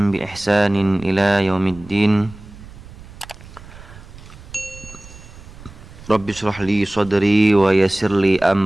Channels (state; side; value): noise; right; rumble, 18 dB below the sound